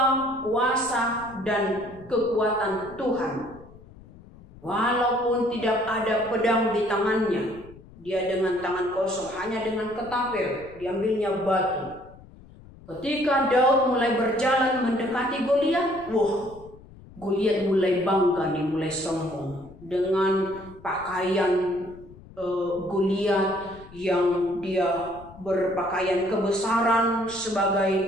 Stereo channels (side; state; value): left; noise; rumble, 21 dB below the sound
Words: kuasa dan kekuatan Tuhan. Walaupun tidak ada pedang di tangannya, dia dengan tangan kosong, hanya dengan ketapel, diambilnya batu. Ketika Daud mulai berjalan mendekati Goliat, Goliat mulai bangga nih, mulai sombong dengan pakaian Goliat yang dia berpakaian kebesaran sebagai